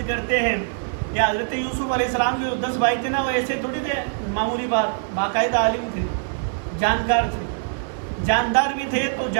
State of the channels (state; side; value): silent; left; digital silence